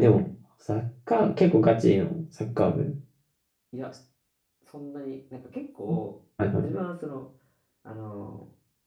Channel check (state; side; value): identical; both; correlation 1.00